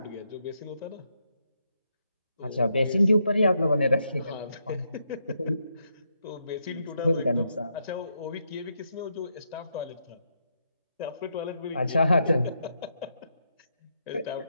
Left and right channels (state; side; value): inverted; both; correlation -0.80